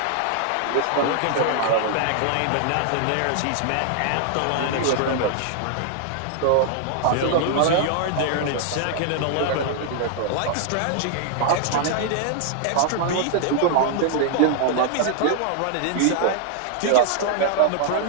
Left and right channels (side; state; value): both; different; correlation 0.00